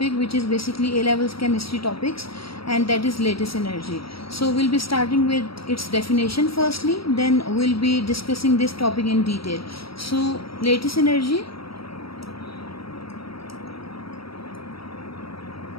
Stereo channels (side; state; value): right; late; 0.75 ms